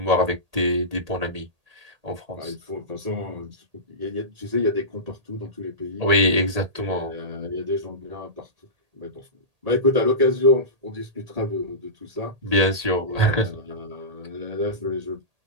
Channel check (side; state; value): left; late; 1.8 ms